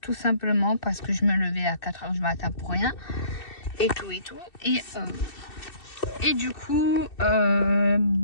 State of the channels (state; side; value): late; right; 2.7 ms